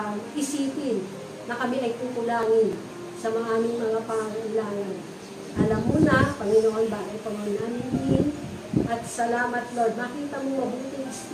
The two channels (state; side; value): identical; both; correlation 1.00